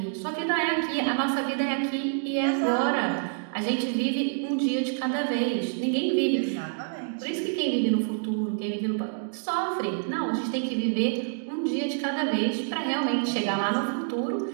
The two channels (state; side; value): silent; left; digital silence